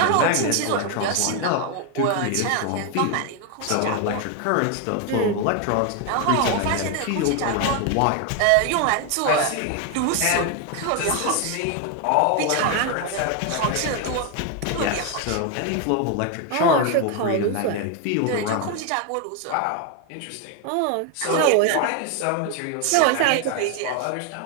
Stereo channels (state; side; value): different; both; correlation 0.01